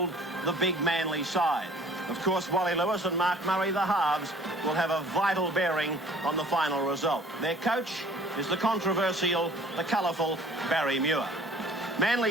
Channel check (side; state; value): both; normal; correlation 0.52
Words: the big Manly side. Of course, Wally Lewis and Mark Murray, the halves, will have a vital bearing on the final result. Their coach is the controversial, the colourful Barry Muir.